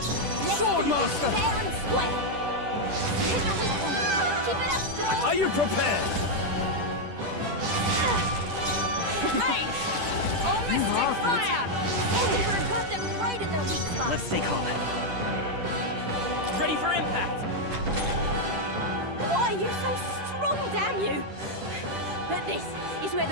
Swordmaster! Fair and square. Hit the weak one. Keep it up, strong. Are you prepared? Hey! Oh, mystic fire! Everyone got them right in their weak spot. Let's stay calm. Ready for impact! Why are you so strong, damn you? But this is where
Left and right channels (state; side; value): late; left; 10 ms